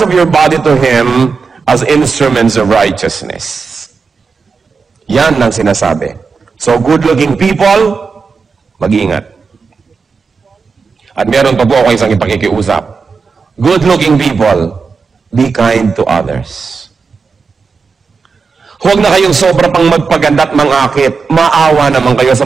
of your body to Him as instruments of righteousness. Yan ang sinasabi. So good-looking people, mag-iingat. At meron pa po ako isang ipakikiusap. Good-looking people, be kind to others. Huwag na kayong sobra pang magpaganda at mangakit. Maawa naman kayo sa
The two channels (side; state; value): left; quieter; 5.0 dB